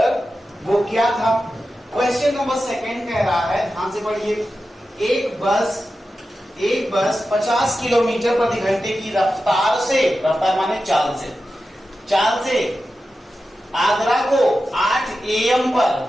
वो क्या था? क्वेश्चन नंबर 2 कह रहा है, ध्यान से पढ़िए। एक बस 50 किलोमीटर प्रति घंटे की रफ्तार से, रफ्तार माने चाल से आगरा को 8 AM पर,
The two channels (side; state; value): both; normal; correlation 0.92